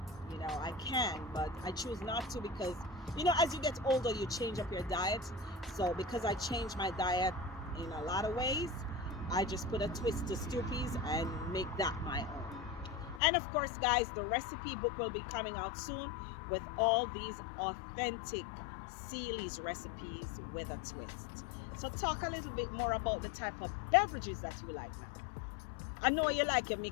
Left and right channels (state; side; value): drops out; right; at 13.2 s